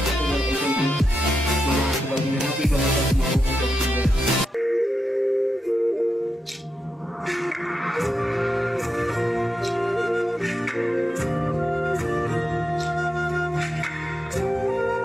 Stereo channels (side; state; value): both; normal; correlation 0.87